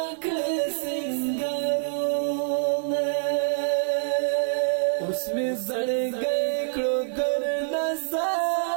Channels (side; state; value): left; silent; 61 dB below the other